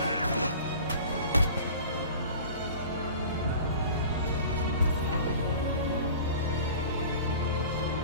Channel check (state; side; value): inverted; both; correlation -0.42